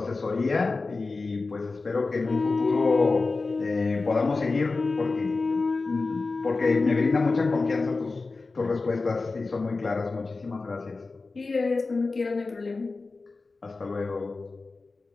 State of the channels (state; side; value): quieter; right; 3.8 dB